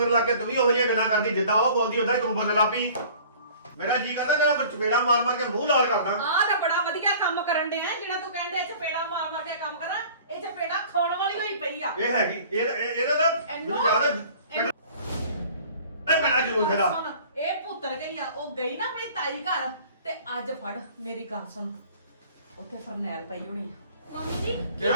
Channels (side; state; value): both; inverted; correlation -0.48